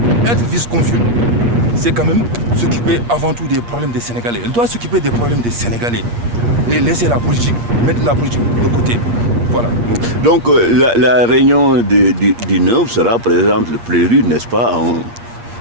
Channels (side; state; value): left; late; 8.5 ms